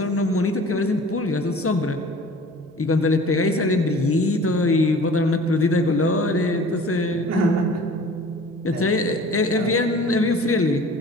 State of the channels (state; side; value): normal; both; correlation 0.45